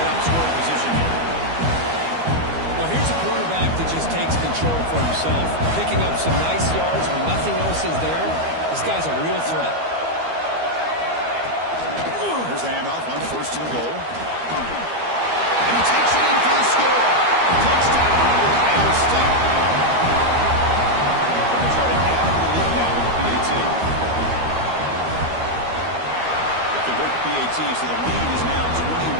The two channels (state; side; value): late; left; 12 ms